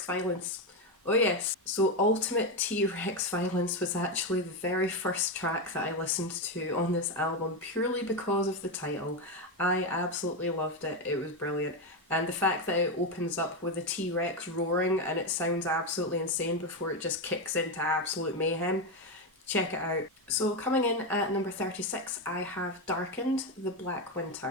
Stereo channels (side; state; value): both; normal; correlation 0.10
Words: Violence. Oh yes, so Ultimate T-Rex Violence was actually the very first track that I listened to on this album purely because of the title. I absolutely loved it, it was brilliant. And the fact that it opens up with a T-Rex roaring and it sounds absolutely insane before it just kicks into absolute mayhem. Check it out. So coming in at number 36, I have Darkened, The Black